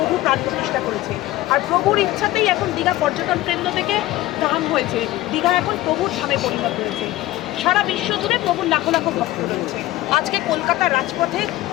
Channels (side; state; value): right; quieter; 16.5 dB